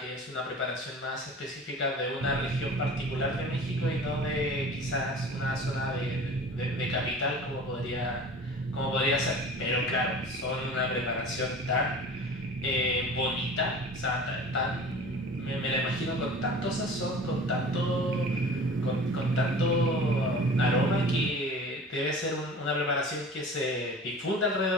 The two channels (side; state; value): both; normal; correlation 0.40